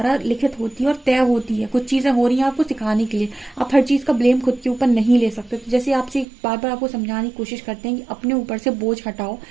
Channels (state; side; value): drops out; left; at 6.2 s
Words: लिखित होती है और तय होती है। कुछ चीज़ें हो रही हैं आपको सिखाने के लिए, आप हर चीज़ का ब्लेम खुद के ऊपर नहीं ले सकते। तो जैसे आपसे बार बार आपको समझाने की कोशिश करते हैं कि अपने ऊपर से बोझ हटाओ,